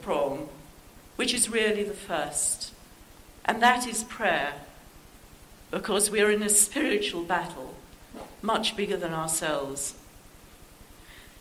prong, which is really the first, and that is prayer, because we are in a spiritual battle, much bigger than ourselves.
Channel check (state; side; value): identical; both; correlation 1.00